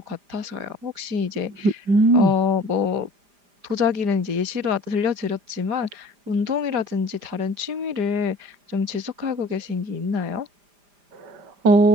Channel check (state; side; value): late; left; 5.0 ms